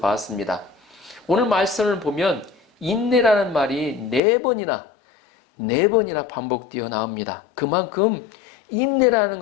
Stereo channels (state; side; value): drops out; right; at 4.2 s